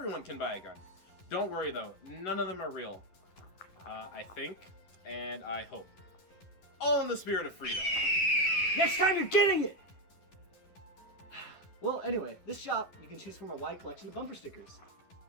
can buy a gun. Don't worry though, none of them are real. I think, and I hope. All in the spirit of freedom. Next time you're getting it! Well, anyway, this shop, you can choose from a wide collection of bumper stickers.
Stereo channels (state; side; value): late; right; 11 ms